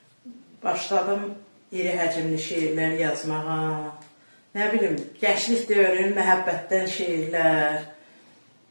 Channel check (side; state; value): both; inverted; correlation -1.00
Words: başladım iri həcmli şeirlər yazmağa. Nə bilim, gənclik dövrünün məhəbbətdən şeirlər,